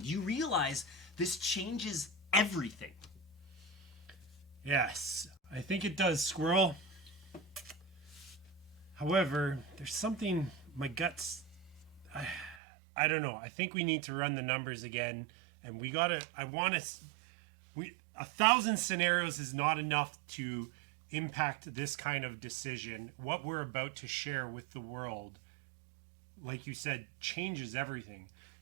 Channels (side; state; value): left; drops out; at 12.6 s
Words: Do you realize this changes everything? Yes, I think it does, Squirrel. However, there's something my guts. I don't know. I think we need to run the numbers again, and we gotta. I want to. 1,000 scenarios is not enough to impact this kind of decision. What we're about to share with the world, like you said, changes everything.